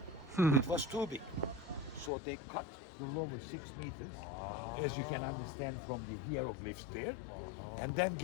It was too big. So they cut the lower 6 meters, as you can understand from the hieroglyphs there, and then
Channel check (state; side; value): drops out; right; at 2.1 s